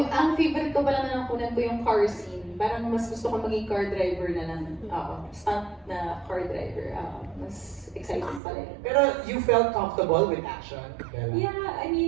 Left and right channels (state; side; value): drops out; left; at 8.4 s